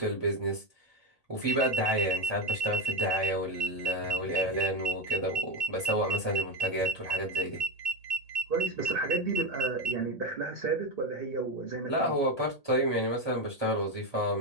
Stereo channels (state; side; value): late; right; 1.8 ms